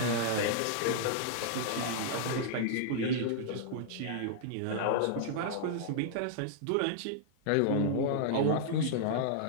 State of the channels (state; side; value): different; both; correlation -0.01